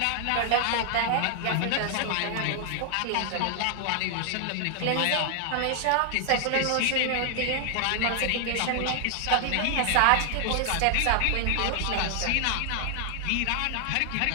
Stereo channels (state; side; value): different; both; correlation 0.00